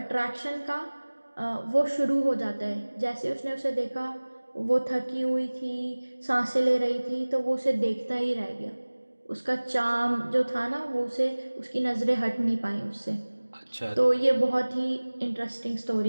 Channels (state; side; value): inverted; both; correlation -1.00